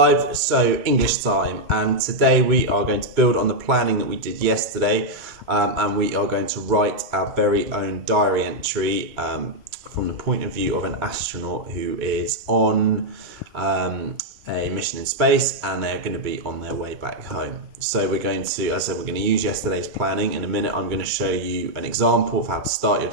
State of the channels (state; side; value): late; left; 2.1 ms